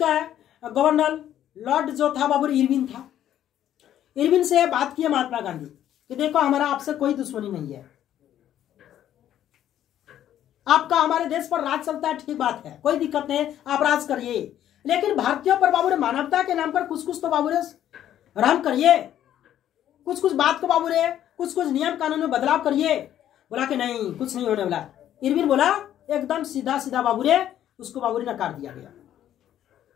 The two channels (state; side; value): quieter; right; 11.3 dB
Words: गवर्नर लॉर्ड जो था बाबू इरविन था। इरविन से बात की महात्मा गांधी कि देखो हमारा आपसे कोई दुश्मनी नहीं है, आपका हमारे देश पर राज चलता है, ठीक बात है, कोई दिक्कत नहीं, आप राज करिए, लेकिन भारतीयों पर बाबू मानवता के नाम पर कुछ कुछ तो बाबू रहम करिए, कुछ कुछ बात को बाबू कुछ कुछ नियम कानून में बदलाव करिए। बोला कि नहीं, कुछ नहीं होने वाला। इरविन बोला एकदम सीधा सीधा बाबू उसको बाबू नकार दिया गया।